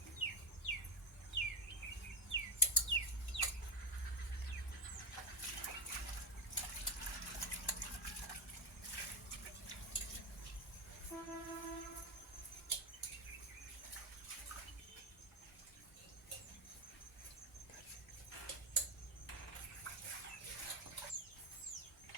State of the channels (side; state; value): both; normal; correlation 0.13